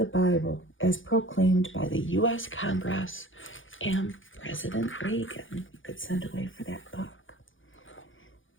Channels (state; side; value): late; right; 0.57 ms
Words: Bible as proclaimed by the U.S. Congress and President Reagan. You could send away for that book.